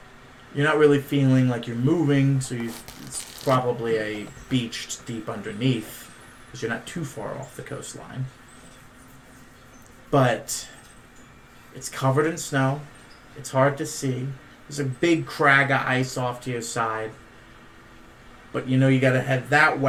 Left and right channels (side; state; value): both; identical; correlation 1.00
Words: You're not really feeling like you're moving, so it's probably a beach deep underneath, because you're not too far off the coastline. But it's covered in snow. It's hard to see. There's a big crag of ice off to your side. But you gotta head that